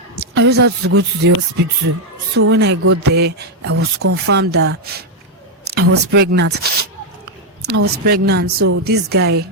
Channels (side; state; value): both; normal; correlation 0.02